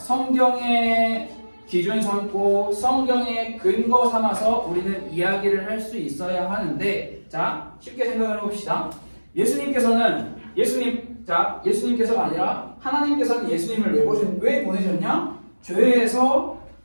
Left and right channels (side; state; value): both; inverted; correlation -1.00